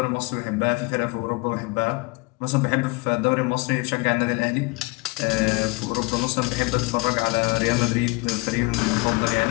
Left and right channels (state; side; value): quieter; right; 26.2 dB